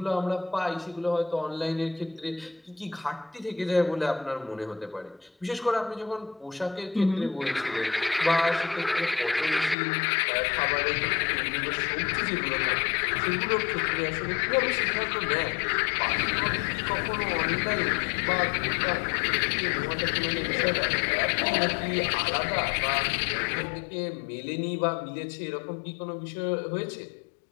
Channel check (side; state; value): right; drops out; at 9.8 s